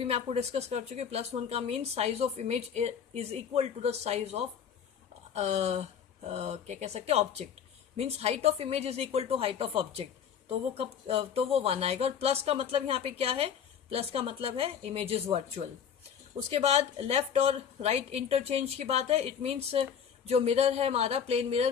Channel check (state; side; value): quieter; right; 7.8 dB